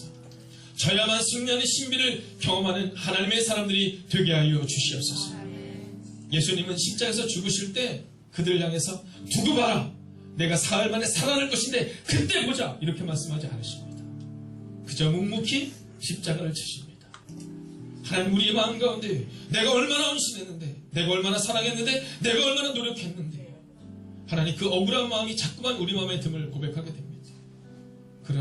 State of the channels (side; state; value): both; identical; correlation 1.00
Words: 져야만 승리하는 신비를 경험하는 하나님의 사람들이 되게 하여 주시옵소서. 예수님은 십자가에서 죽으실 때 그들을 향해서 두고 봐라, 내가 사흘 만에 살아날 것인데 그때 보자, 이렇게 말씀하지 않으십니다. 그저 묵묵히 십자가를 지십니다. 하나님 우리의 마음 가운데 내가 얼마나 헌신했는데, 내가 얼마나 사랑했는데, 내가 얼마나 노력했는데, 하나님 그 억울한 마음이 자꾸만 우리 마음에 듦을 고백하게 됩니다.